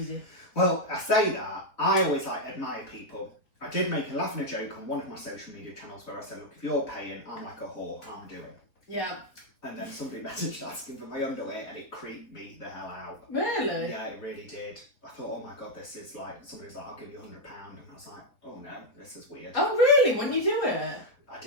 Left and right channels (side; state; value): right; late; 4.0 ms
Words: Well, I say that. I always admire people. I did make a laugh and a joke on one of my social media channels where I said, look, if you're paying, I'm like a whore, I'm doing. Yeah. And then somebody messaged asking for my underwear and it creeped me the hell out. Really? Yeah, it really did. I thought, oh my God, this is like, somebody's like, I'll give you £100. And I was like, oh no, this is weird. Oh, really? When you do it? I